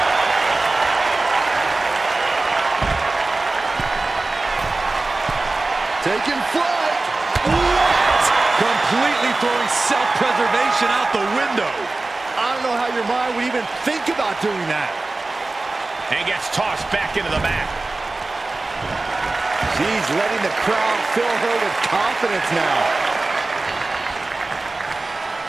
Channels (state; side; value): quieter; left; 3.3 dB